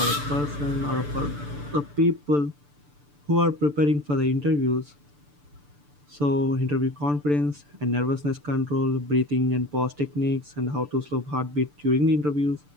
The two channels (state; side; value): late; left; 6.8 ms